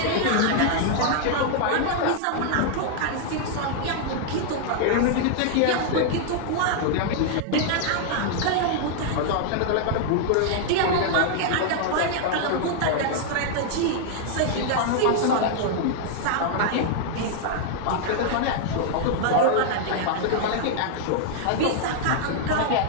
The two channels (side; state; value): both; different; correlation -0.01